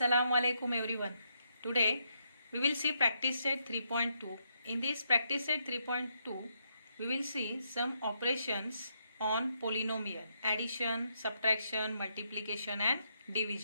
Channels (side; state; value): both; inverted; correlation -0.78